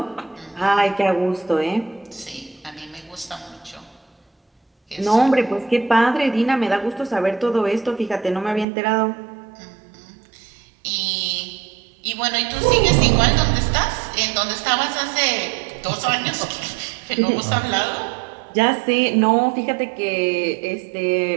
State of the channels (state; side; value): drops out; left; at 8.7 s